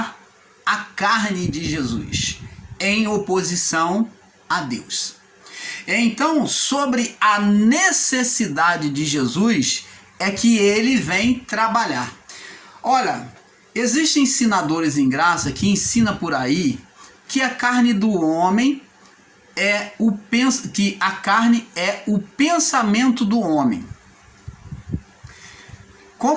a carne de Jesus em oposição a Deus. Então, sobre a necessidade de Jesus, é que ele vem trabalhar. Olha, existem ensinadores em graça que ensinam por aí que a carne do homem que a carne é o pensamento do homem.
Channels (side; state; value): both; identical; correlation 1.00